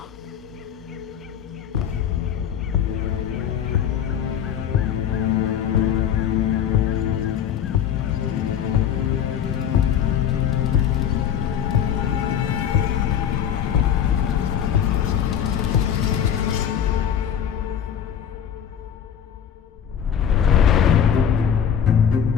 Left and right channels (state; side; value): quieter; right; 8.8 dB